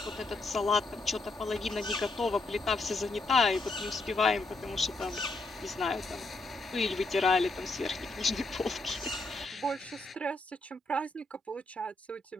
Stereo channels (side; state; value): right; quieter; 3.1 dB